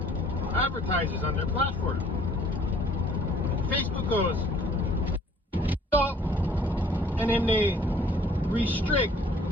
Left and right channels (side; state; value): both; normal; correlation 0.57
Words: advertisers on their platform. Facebook goes, so, and then they restrict